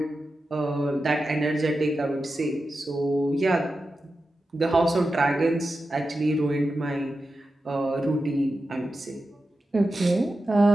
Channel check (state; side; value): normal; both; correlation 0.91